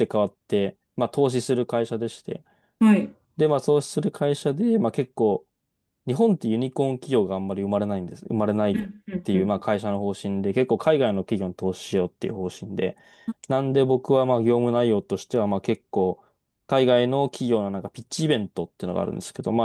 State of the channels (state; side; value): identical; both; correlation 1.00